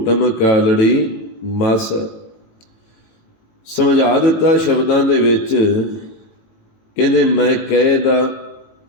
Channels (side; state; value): right; late; 18 ms